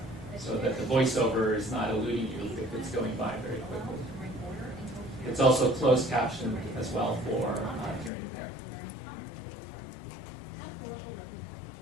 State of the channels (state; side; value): drops out; right; at 8.1 s